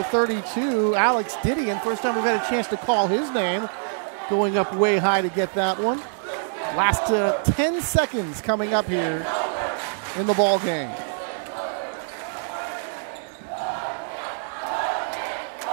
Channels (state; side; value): silent; left; digital silence